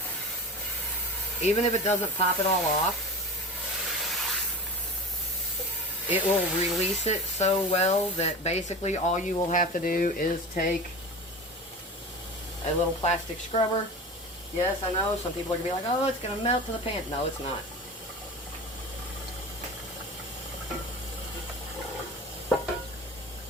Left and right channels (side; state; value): both; normal; correlation 0.32